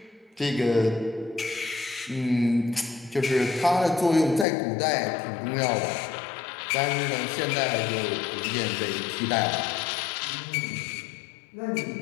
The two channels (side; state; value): right; drops out; at 4.5 s